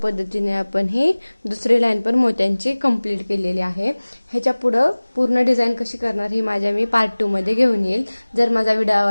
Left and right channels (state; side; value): inverted; both; correlation -1.00